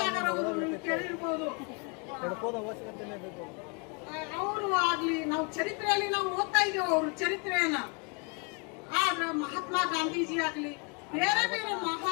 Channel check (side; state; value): right; quieter; 33.8 dB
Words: ಅವರು ನೀವು ಕೇಳಿರ್ಬೋದು. ಅವರು ಆಗ್ಲಿ ನಾವು ಚರಿತ್ರೆಯಲ್ಲಿ ನಾವು ಓದ್ತಾ ಇದ್ದೇವೆ ಅವ್ರ ಚರಿತ್ರೆಯನ್ನ. ಆದ್ರೆ ಮಹಾತ್ಮ ಗಾಂಧೀಜಿ ಆಗ್ಲಿ ಬೇರೆ ಬೇರೆ